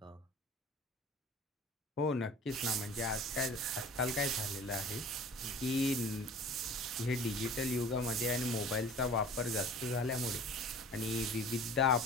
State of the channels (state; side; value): normal; both; correlation 0.44